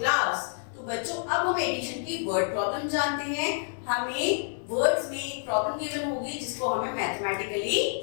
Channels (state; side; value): silent; right; digital silence